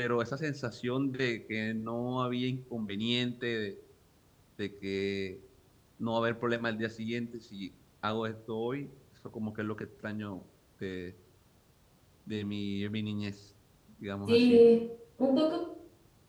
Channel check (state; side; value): identical; both; correlation 1.00